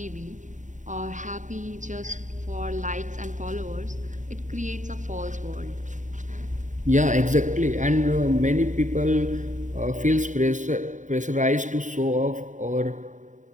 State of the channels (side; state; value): left; late; 0.36 ms